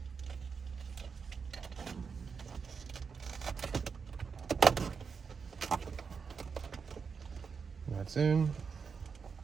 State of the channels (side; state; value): left; quieter; 5.7 dB